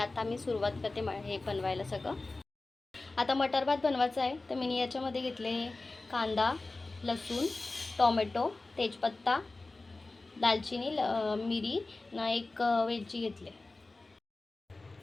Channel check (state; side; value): quieter; right; 3.3 dB